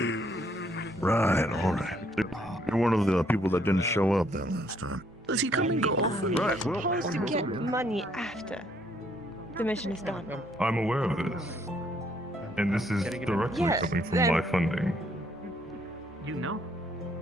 Right, alright. You're one of the people that didn't show up that last time. Does he come and go? Right, well... Supposed to get money after the mission is done. I'm aware of this, and this is directly Yes, coming from then- my funding. You know?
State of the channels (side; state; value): both; normal; correlation 0.68